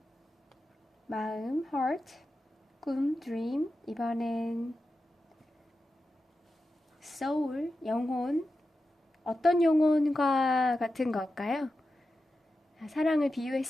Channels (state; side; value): normal; both; correlation 0.91